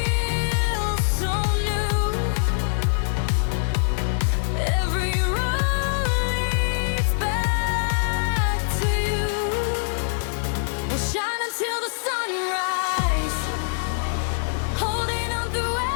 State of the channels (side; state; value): right; silent; digital silence